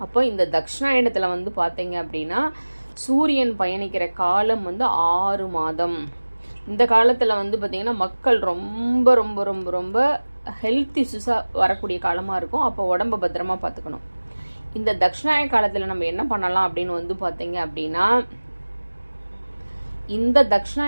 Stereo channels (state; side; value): inverted; both; correlation -1.00